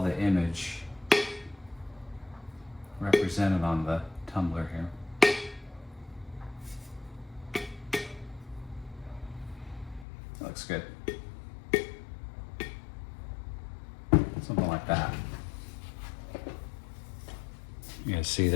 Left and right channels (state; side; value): drops out; right; at 10.1 s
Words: the image represented on the tumbler here. That looks good. Something like that. You guys see